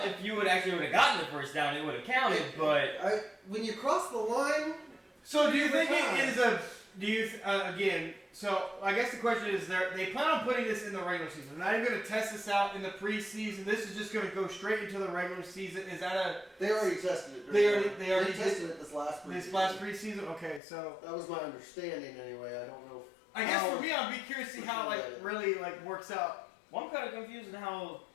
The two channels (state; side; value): drops out; right; at 20.6 s